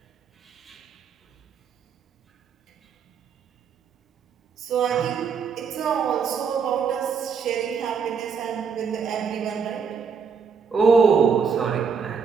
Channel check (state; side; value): quieter; left; 6.1 dB